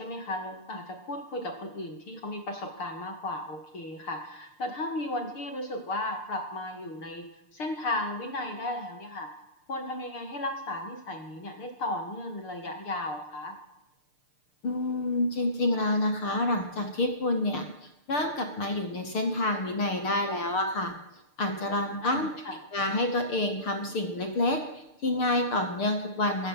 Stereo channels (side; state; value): right; late; 6.7 ms